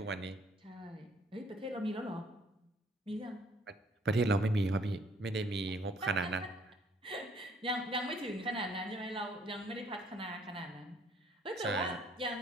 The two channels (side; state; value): both; normal; correlation 0.62